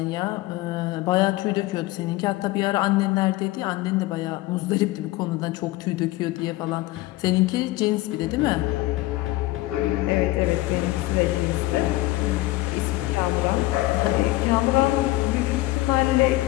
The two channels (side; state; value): right; quieter; 18.6 dB